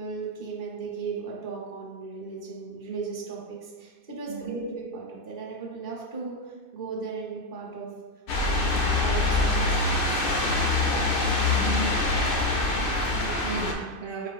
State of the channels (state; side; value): late; right; 2.6 ms